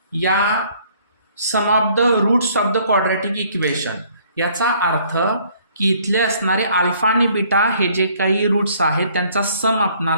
या sum of the roots of the quadratic equation याचा अर्थ की इथले असणारे अल्फा आणि बीटा हे जे काही रूट्स आहेत त्यांचा सम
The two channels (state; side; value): inverted; both; correlation -0.61